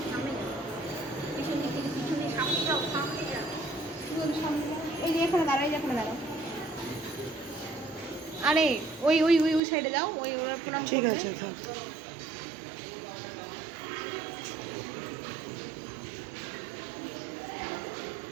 সামনে যাও, পিছন দিক থেকে পিছনে, সামনে যাও, সামনে যাও। এই যে এখানে দাঁড়াও, এই যে এখানে দাঁড়াও। আরে ওই ওই ওই ওই সাইডে যাও, ওই ওরা প্রণাম ঠিক করবে। আছে থাক।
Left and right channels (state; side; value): drops out; left; at 9.6 s